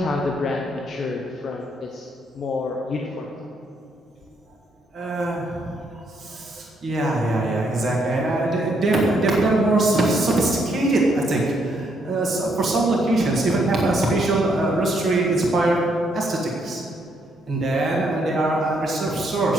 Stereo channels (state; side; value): normal; both; correlation 0.73